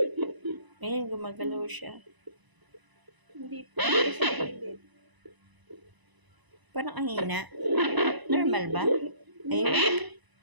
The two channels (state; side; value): late; left; 1.0 ms